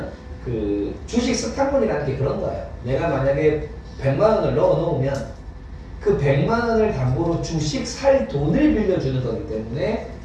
그 주식 스탁문이라는 게 그런 거예요. 내가 만약에 100만 원을 넣어 놓으면 그 100만 원을 담보로 주식 살 돈을 빌려주는 거기 때문에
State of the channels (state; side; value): identical; both; correlation 1.00